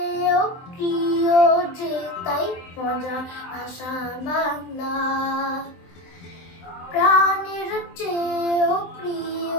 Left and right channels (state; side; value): late; right; 23 ms